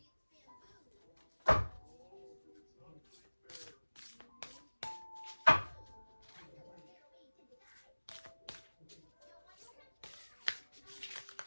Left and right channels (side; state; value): both; inverted; correlation -1.00